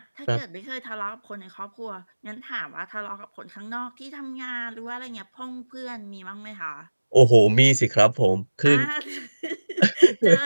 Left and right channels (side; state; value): both; inverted; correlation -1.00